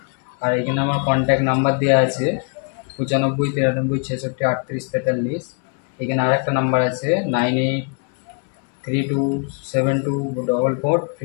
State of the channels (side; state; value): right; quieter; 39.2 dB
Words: আর এখানে আমার কন্ট্যাক্ট নাম্বার দেওয়া আছে 95 93 66 38 43। এখানে আরেকটা নাম্বার আছে